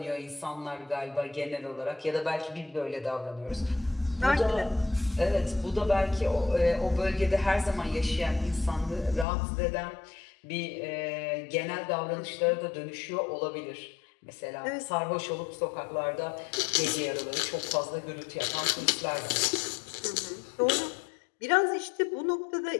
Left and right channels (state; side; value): drops out; right; at 9.2 s